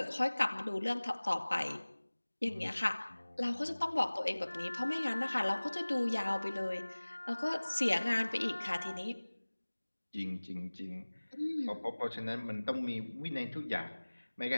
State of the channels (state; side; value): inverted; both; correlation -1.00